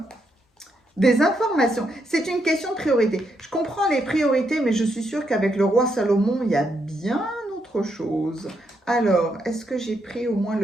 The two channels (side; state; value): both; normal; correlation 0.79